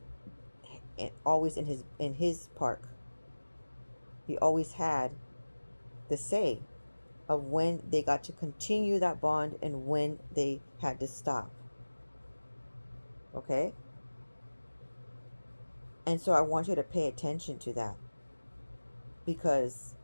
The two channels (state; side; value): inverted; both; correlation -1.00